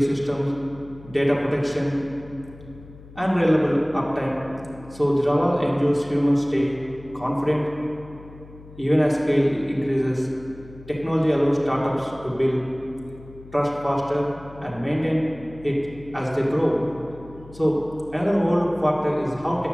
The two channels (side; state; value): left; noise; hum, 19 dB below the sound